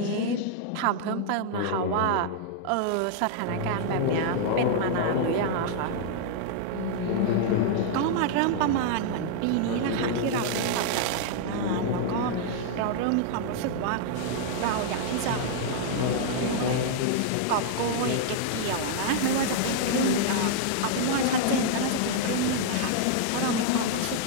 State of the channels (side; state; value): both; different; correlation -0.01